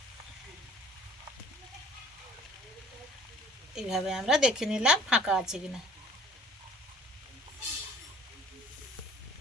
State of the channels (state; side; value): normal; both; correlation 0.54